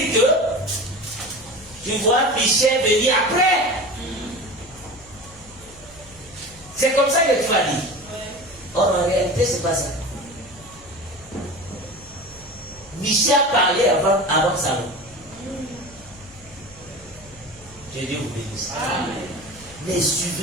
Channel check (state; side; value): noise; left; hum, 23 dB below the sound